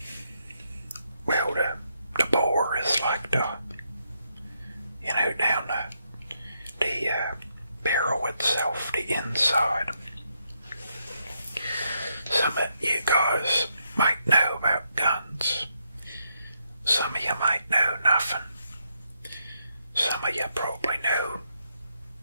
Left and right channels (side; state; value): both; inverted; correlation -0.78